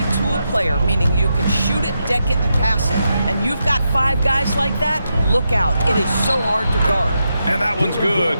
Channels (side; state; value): both; inverted; correlation -0.85